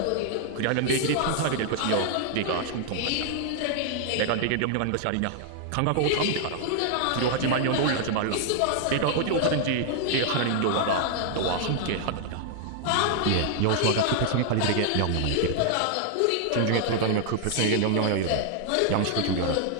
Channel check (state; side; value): different; both; correlation 0.00